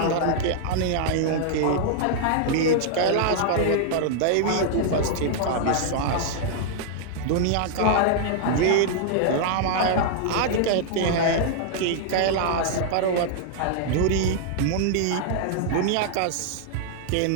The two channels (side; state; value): both; different; correlation -0.01